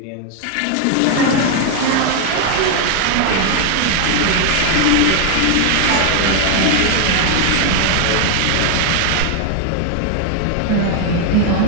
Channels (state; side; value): different; both; correlation 0.00